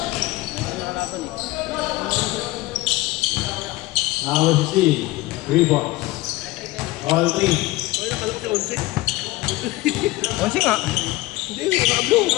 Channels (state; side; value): quieter; right; 19.3 dB